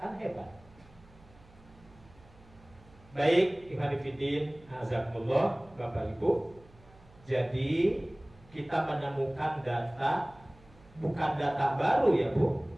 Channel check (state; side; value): noise; right; hum, 25 dB below the sound